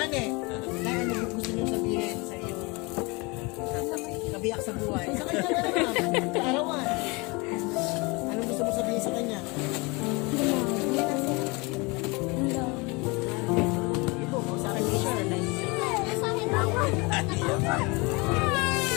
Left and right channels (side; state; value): right; quieter; 26.9 dB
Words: eh. Kaya ano yung gusto niyo sabihin sa iyong kabiyak sa buhay? Sa kanya na naman, sa arawan. Anong gusto mo sabihin sa kanya? Ito, sa akin mo siya.